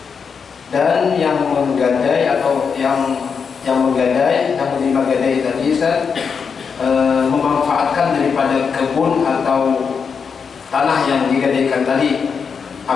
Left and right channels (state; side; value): quieter; right; 6.0 dB